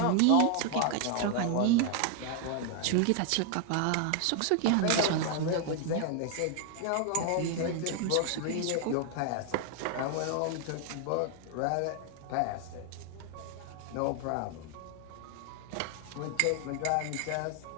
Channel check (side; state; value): both; different; correlation 0.00